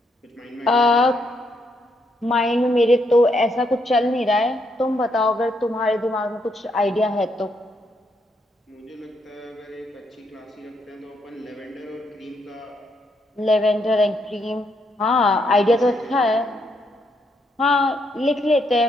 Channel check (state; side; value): normal; both; correlation 0.76